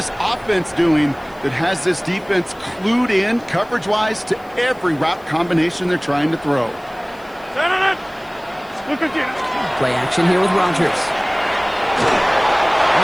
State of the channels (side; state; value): left; noise; hiss, 29 dB below the sound